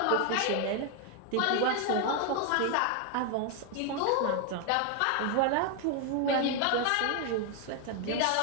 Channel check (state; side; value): different; both; correlation 0.01